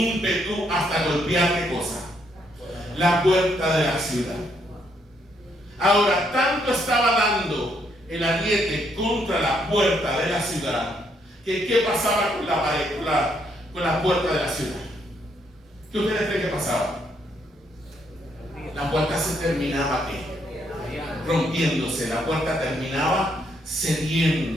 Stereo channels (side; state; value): both; normal; correlation 0.73